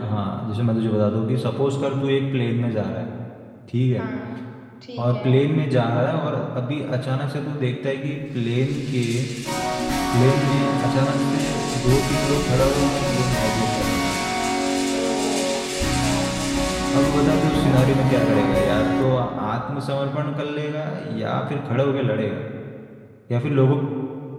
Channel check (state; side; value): identical; both; correlation 1.00